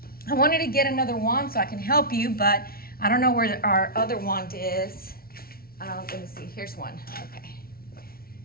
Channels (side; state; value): right; late; 0.44 ms